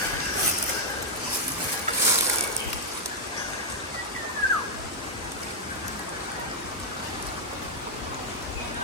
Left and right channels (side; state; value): both; normal; correlation -0.02